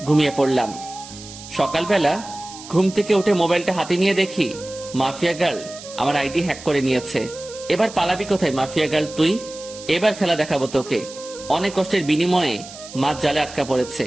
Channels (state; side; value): noise; right; hiss, 15 dB below the sound